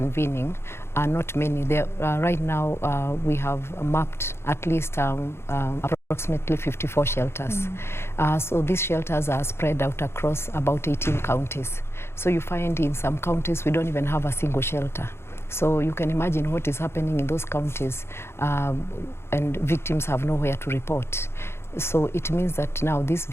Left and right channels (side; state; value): right; late; 0.12 ms